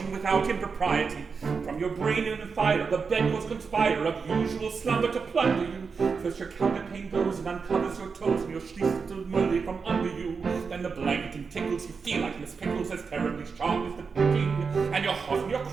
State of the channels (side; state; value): left; quieter; 5.3 dB